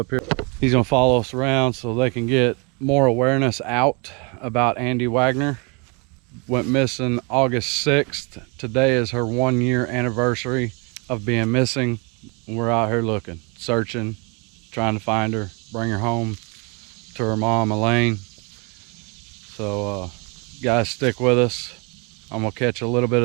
He's gonna follow us around so they can get more awareness out about Andi Wagner. Went missing August 6th. Today is her 1-year anniversary of being missing. We're out here looking, searching, trying to find her, bring her home to her mom, Elaine. So guys, stick with us. I'm gonna catch a little bit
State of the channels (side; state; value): left; quieter; 31.7 dB